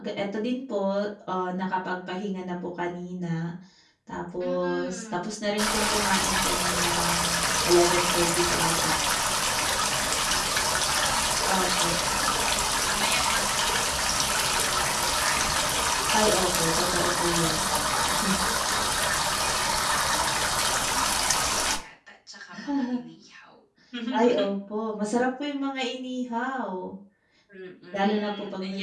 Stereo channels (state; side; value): identical; both; correlation 1.00